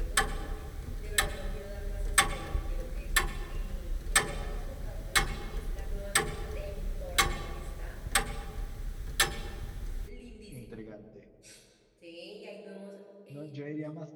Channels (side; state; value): both; identical; correlation 1.00